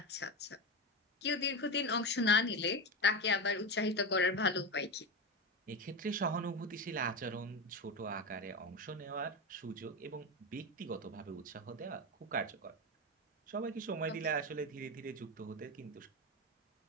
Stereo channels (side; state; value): both; normal; correlation 0.18